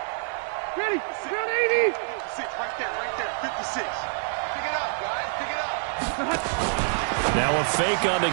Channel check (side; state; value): left; silent; digital silence